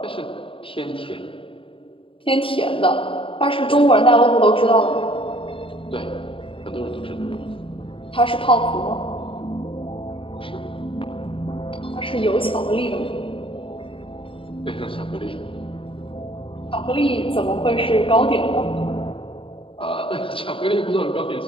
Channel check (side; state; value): right; late; 0.26 ms